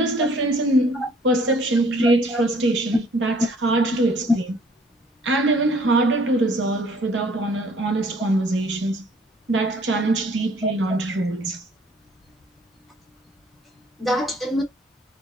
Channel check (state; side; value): normal; both; correlation 0.58